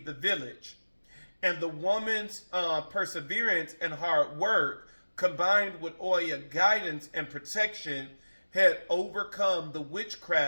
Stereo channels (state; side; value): inverted; both; correlation -1.00